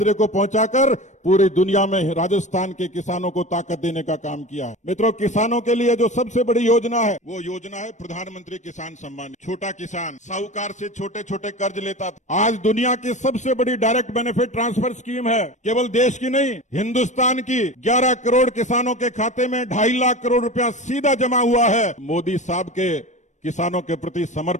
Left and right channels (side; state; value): right; late; 0.35 ms